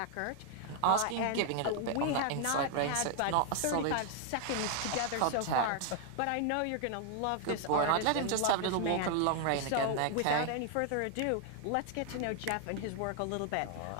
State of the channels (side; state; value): both; different; correlation 0.00